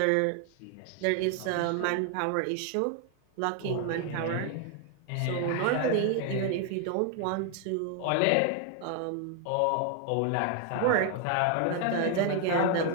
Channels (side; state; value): both; different; correlation 0.00